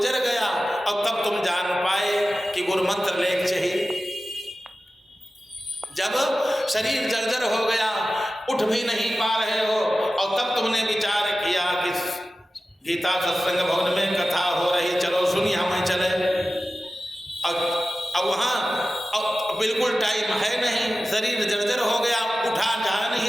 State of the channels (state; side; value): normal; both; correlation 0.95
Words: गया और तब तुम जान पाए कि गुरु मंत्र लेख चाहिए। जब शरीर जर्जर हो गया, उठ भी नहीं पा रहे हो, और तब तुमने विचार किया कि गीता सत्संग भवन में कथा हो रही, चलो सुनिए हमें चले। अब वहाँ बिल्कुल टाइम है नहीं, शरीर जर्जर हो गया, उठा जा